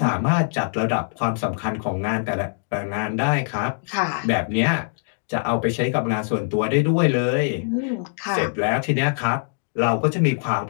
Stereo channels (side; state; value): right; silent; digital silence